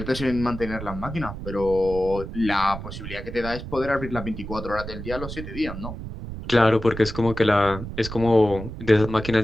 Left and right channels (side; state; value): right; noise; rumble, 9 dB below the sound